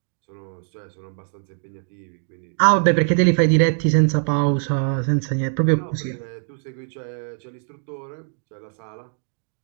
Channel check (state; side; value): silent; left; digital silence